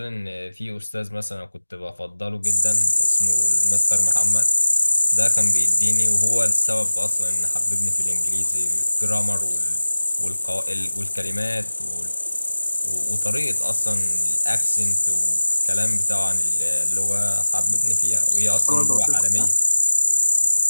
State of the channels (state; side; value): inverted; both; correlation -1.00